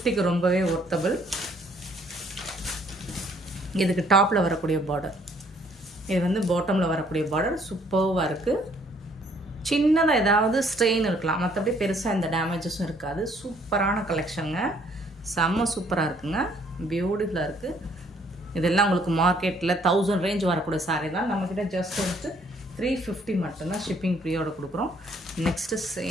ரொம்பவே ஒர்த்தபிள். இதுக்கு டாப்பில் வரக்கூடிய பார்டர், இது வந்து பாட்டமில் வரக்கூடிய பார்டர் சூப்பராக இருக்குது. சின்னதாக ஏதாவது ஸ்ட்ரெயின் இருக்கலாம், மற்றபடி பெருசாக எந்த டேமேஜஸும் இருக்காது. சூப்பரான கலெக்ஷனுங்க, செம்ம சூப்பராக இருக்குங்க, பியூட்டிஃபுல்லாக இருக்குது. இதெல்லாம் உங்களுக்கு மார்க்கெட்டில் 1000 ரேஞ்ச் வரக்கூடிய சாரீ தான். நம்மக்கிட்ட ஜஸ்ட் வந்துட்டு 350 மட்டும்தான். ஷிப்பிங் ஃப்ரீயோட கொடுக்குறோம். நெக்ஸ்ட்டு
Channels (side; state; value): both; normal; correlation 0.64